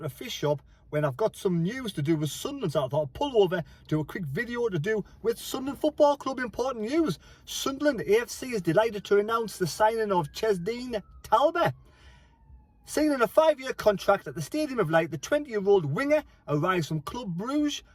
a fish shop when I've got some news to do with Sunderland. So I thought I'd pull over, do a quick video to do with Sunderland Football Club. Important news. Sunderland AFC is delighted to announce the signing of Chemsdine Talbi. Signing a 5-year contract at the Stadium of Light, the 20-year-old winger arrives from Club Bruges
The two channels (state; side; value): identical; both; correlation 1.00